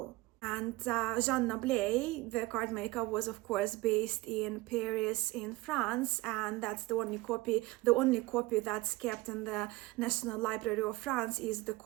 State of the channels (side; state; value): left; quieter; 20.3 dB